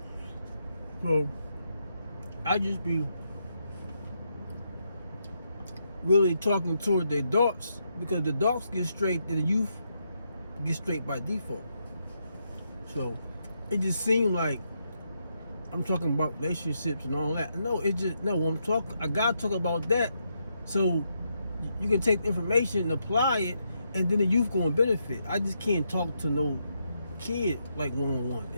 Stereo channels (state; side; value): inverted; both; correlation -0.81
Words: So, I just be really talking toward the adults, because the adults get straight and the youth get straight by default. So, it just seemed like I'm talking about relationships and all that. No, I gotta talk about that so you can take the information and apply it, and then the youth gonna benefit. I just can't talk to no kid like one-on-one.